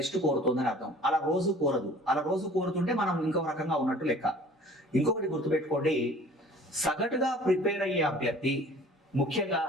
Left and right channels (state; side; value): normal; both; correlation 0.48